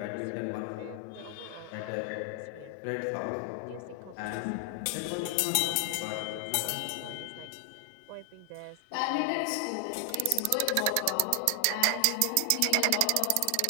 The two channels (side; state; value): both; different; correlation 0.00